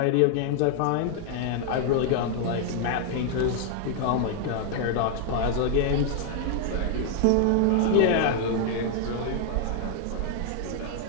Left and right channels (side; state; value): both; different; correlation 0.00